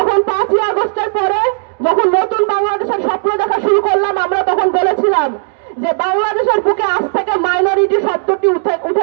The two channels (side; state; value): left; silent; digital silence